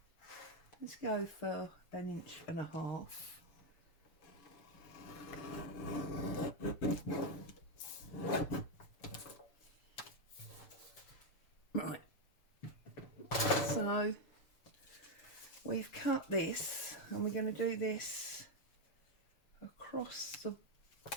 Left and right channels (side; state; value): right; late; 7.0 ms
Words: Let's go for 1.5 inches. Right, so we've cut this and we're going to do this across the